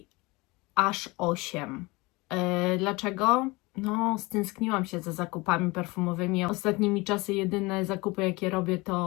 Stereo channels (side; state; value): right; quieter; 24.0 dB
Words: aż 8. Dlaczego? No, stęskniłam się za zakupami perfumowymi. Ostatnimi czasy jedyne zakupy, jakie robię,